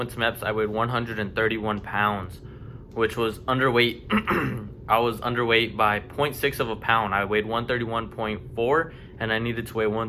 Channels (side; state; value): both; identical; correlation 1.00